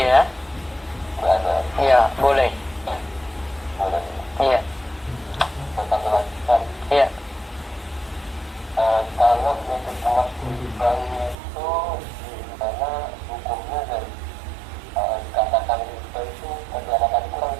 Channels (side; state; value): left; drops out; at 11.4 s